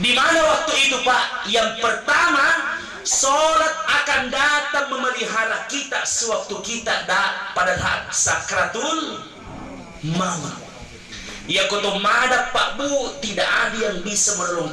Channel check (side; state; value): both; identical; correlation 1.00